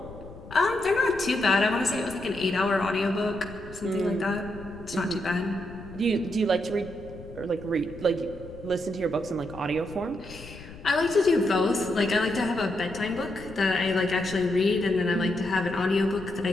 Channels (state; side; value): noise; left; rumble, 16 dB below the sound